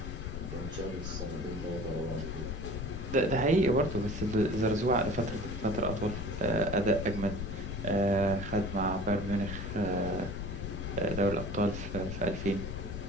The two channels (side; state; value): left; noise; rumble, 5 dB below the sound